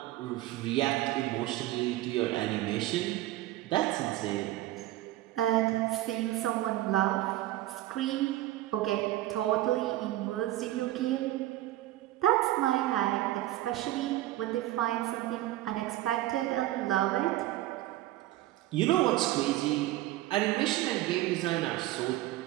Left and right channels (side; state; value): left; quieter; 15.7 dB